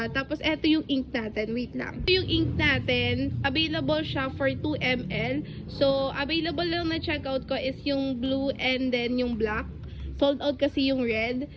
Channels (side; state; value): both; identical; correlation 1.00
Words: Tapos, eto yung ink natin. Wait lang. Ito yung ink natin. Available siya for 2 ml. So, available lang na checkout ko is yung blue and then yung black. Sold out kasi yung red.